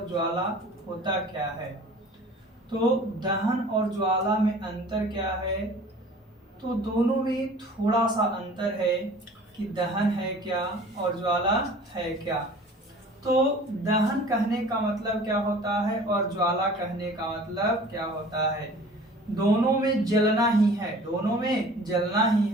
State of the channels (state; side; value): normal; both; correlation 0.46